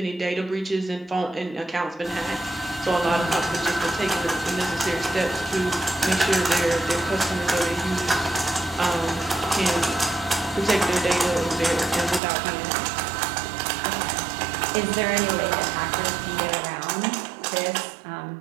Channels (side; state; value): left; drops out; at 12.2 s